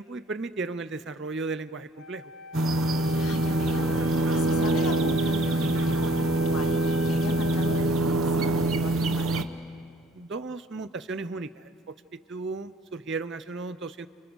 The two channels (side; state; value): both; normal; correlation 0.57